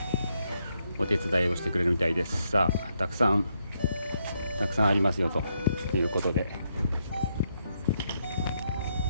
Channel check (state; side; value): inverted; both; correlation -0.78